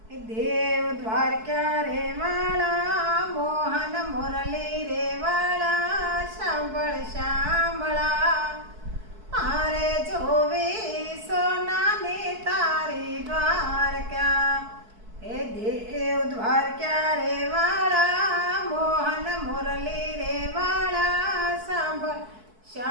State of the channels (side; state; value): left; late; 4.6 ms